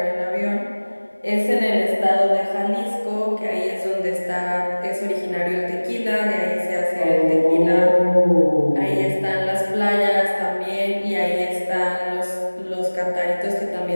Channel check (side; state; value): both; inverted; correlation -1.00